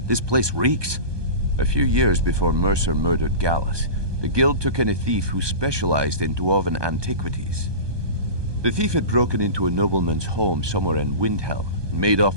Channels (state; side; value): late; left; 1.2 ms